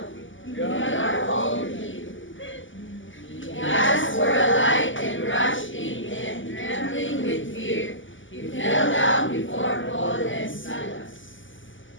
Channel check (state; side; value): late; right; 0.56 ms